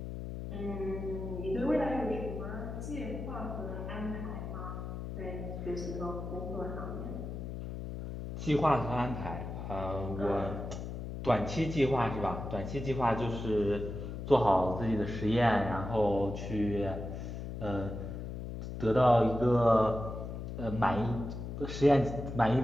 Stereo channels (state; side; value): noise; left; hum, 7 dB below the sound